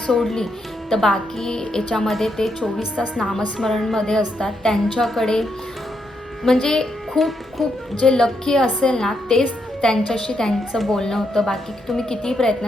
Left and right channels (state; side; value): normal; both; correlation 0.80